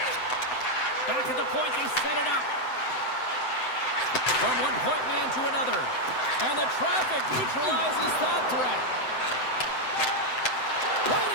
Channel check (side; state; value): right; late; 7.8 ms